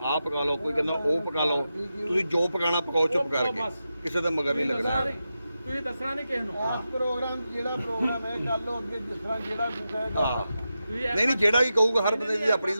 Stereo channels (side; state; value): both; inverted; correlation -0.90